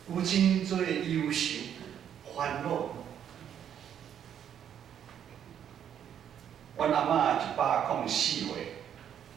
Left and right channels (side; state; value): left; quieter; 9.2 dB